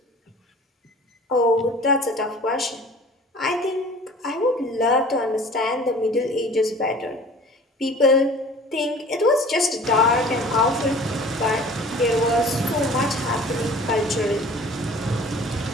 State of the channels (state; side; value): normal; both; correlation 0.46